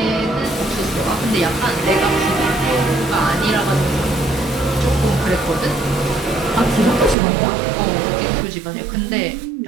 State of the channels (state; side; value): drops out; left; at 7.2 s